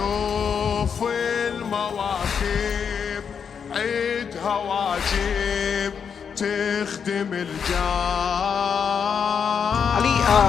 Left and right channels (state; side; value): quieter; right; 6.9 dB